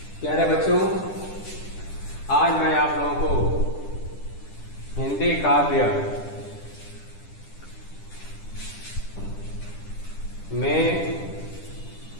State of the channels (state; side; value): late; right; 10 ms